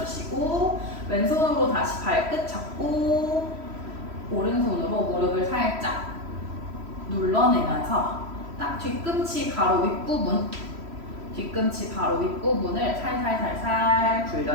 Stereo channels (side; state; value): left; late; 3.0 ms